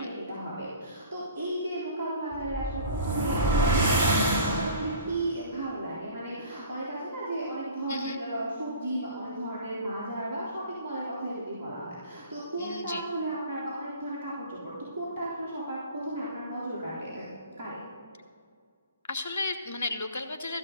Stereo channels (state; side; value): inverted; both; correlation -0.43